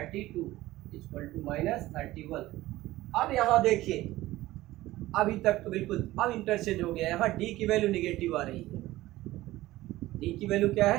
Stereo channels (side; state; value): left; quieter; 16.9 dB